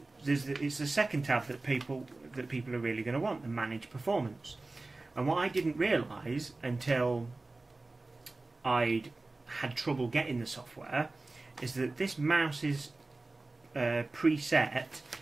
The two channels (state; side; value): quieter; left; 3.2 dB